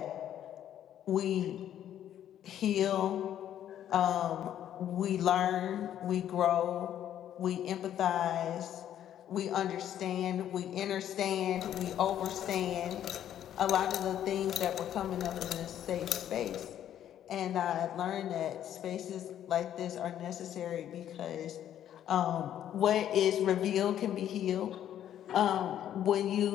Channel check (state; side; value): quieter; right; 10.8 dB